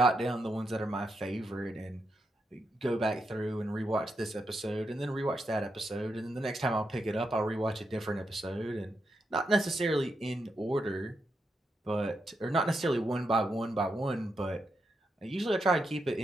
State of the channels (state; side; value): normal; both; correlation 0.83